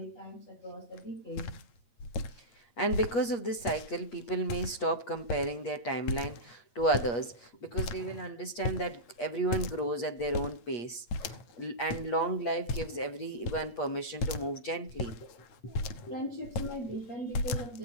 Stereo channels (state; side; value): late; right; 8.4 ms